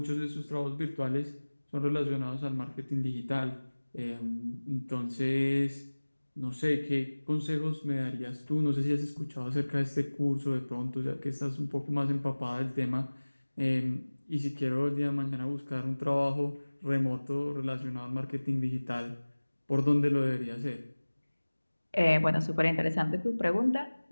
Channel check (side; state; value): both; inverted; correlation -1.00